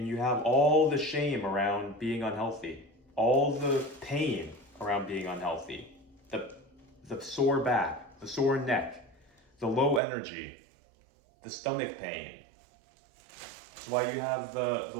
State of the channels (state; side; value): drops out; left; at 10.0 s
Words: you have all the shame around being unhealthy, all the pain around being unhealthy, the sore back, the sore neck, the low energy, the stomach pain. It's why you have the